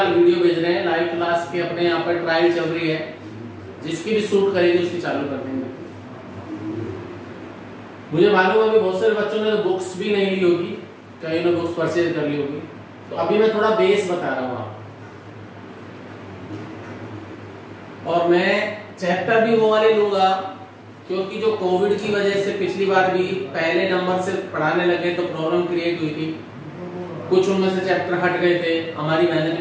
वीडियो भेज रहे हैं लाइव क्लास के, अपने यहाँ पर ट्रायल चल रही है। जिसकी भी सूट करेगी उसकी चालू कर देंगे। मुझे मालूम है अभी बहुत सारे बच्चों ने तो बुक्स भी नहीं ली होगी, कहीं ने बुक्स परचेज कर ली होगी। तो अभी मैं थोड़ा बेस बता रहा हूँ आपको, और मैं चैप्टर भी वो वाले लूंगा क्योंकि जो कोविड की वजह से पिछली बार भी पहले नंबर से पढ़ाने लगे तो प्रॉब्लम क्रिएट हुई थी। कुछ उनमें से चैप्टर हट गए थे, हमारी मेहनत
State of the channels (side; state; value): both; identical; correlation 1.00